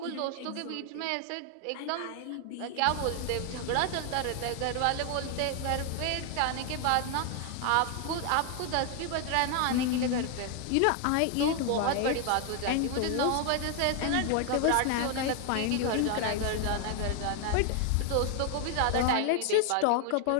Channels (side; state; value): both; different; correlation 0.00